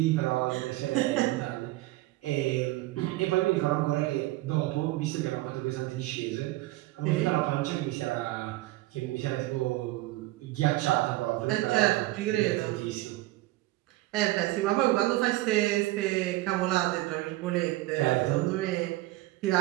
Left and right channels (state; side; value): quieter; left; 18.3 dB